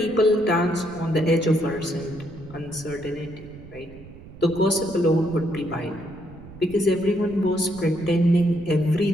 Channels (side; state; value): right; noise; rumble, 18 dB below the sound